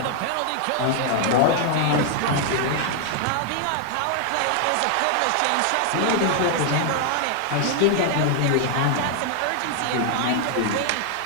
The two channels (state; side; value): different; both; correlation 0.00